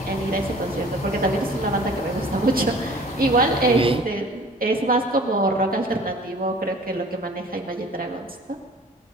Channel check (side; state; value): both; normal; correlation 0.48